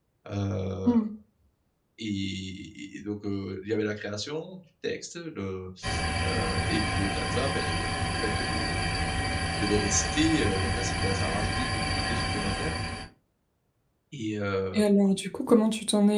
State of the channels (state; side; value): identical; both; correlation 1.00